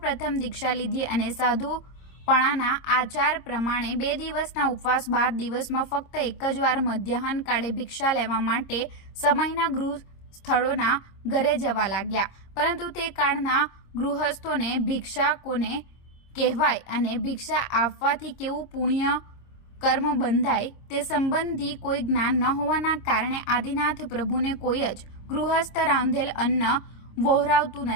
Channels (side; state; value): right; late; 26 ms